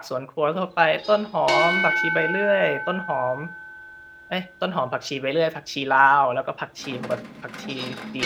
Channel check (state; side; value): identical; both; correlation 1.00